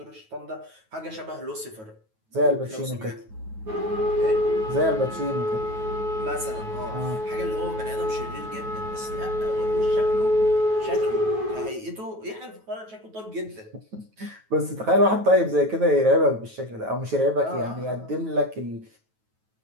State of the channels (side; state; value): left; late; 9.2 ms